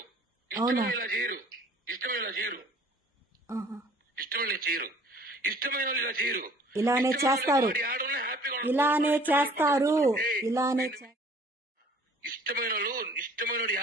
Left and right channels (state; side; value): normal; both; correlation 0.52